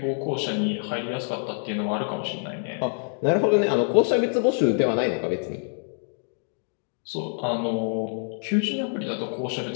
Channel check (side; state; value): right; silent; 61 dB below the other